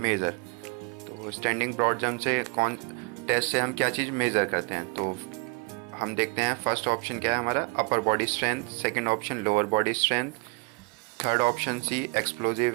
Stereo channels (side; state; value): left; quieter; 30.0 dB